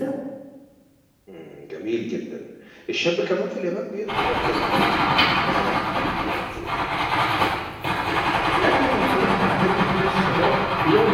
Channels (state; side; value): identical; both; correlation 1.00